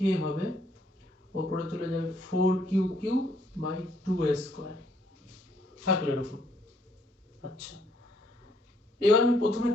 হবে, উপরে চলে যাবে 4q³ বাই 2a স্কোয়ার থাকলো এরকম। আচ্ছা, এবার আমি প্রথমে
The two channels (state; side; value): normal; both; correlation 0.69